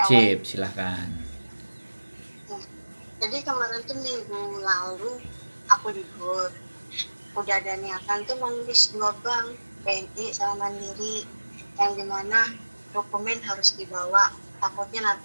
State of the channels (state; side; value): inverted; both; correlation -1.00